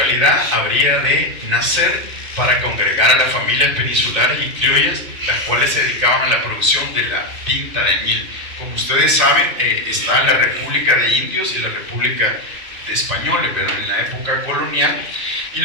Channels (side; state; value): left; late; 2.6 ms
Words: habría de nacer para congregar a las familias peninsulares y criollas, las cuales se dedicaban a la producción de la tinta de añil. Como ustedes saben, está la República de Indios y la República de Españoles, pero en la época colonial. Y